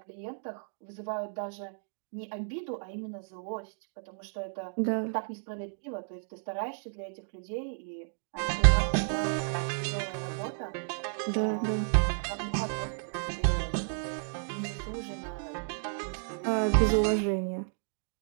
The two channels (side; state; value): left; silent; digital silence